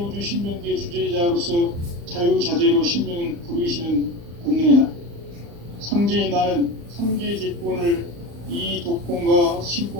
신명계 주제자로서 자유자재로 신명을 부르시는 권능이다. 상제인 나는 3개 대권을 이 독권과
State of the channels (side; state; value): left; late; 35 ms